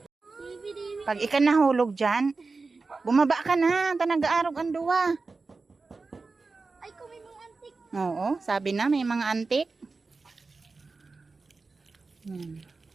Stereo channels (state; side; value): quieter; left; 4.0 dB